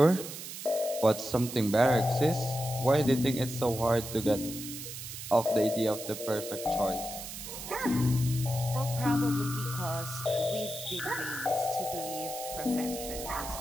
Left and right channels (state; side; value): noise; right; hiss, 9 dB below the sound